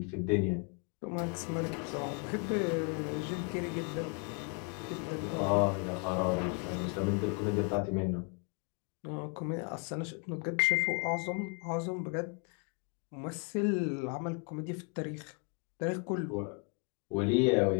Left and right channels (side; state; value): right; quieter; 36.6 dB